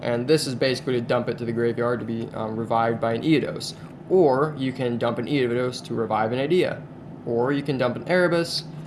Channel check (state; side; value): identical; both; correlation 1.00